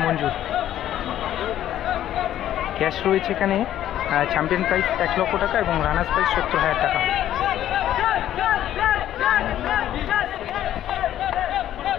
মঞ্জুর। ক্যাশ রয়েছে এখানে, চ্যাম্পিয়ন প্রাইস 1 লক্ষ টাকা এবং রানার্স প্রাইস 70,000 টাকা।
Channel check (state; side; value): quieter; right; 11.9 dB